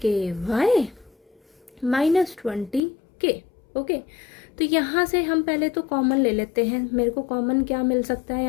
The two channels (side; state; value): right; drops out; at 2.8 s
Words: minus 20k। Okay, तो यहाँ से हम पहले तो कॉमन ले लेते हैं। मेरे को कॉमन क्या मिल सकता है,